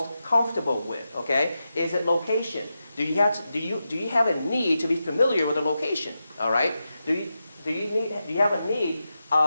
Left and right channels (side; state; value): both; inverted; correlation -0.89